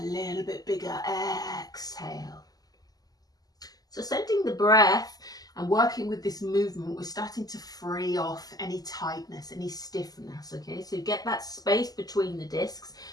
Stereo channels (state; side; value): late; right; 0.18 ms